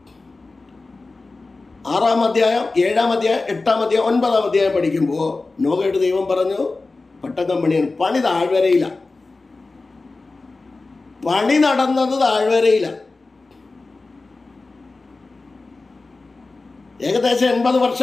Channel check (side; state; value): right; quieter; 3.5 dB